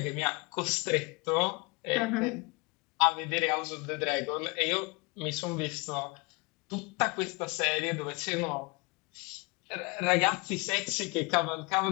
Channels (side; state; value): right; quieter; 27.7 dB